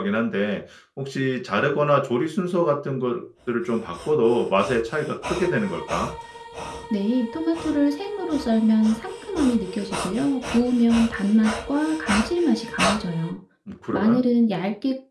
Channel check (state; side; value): identical; both; correlation 1.00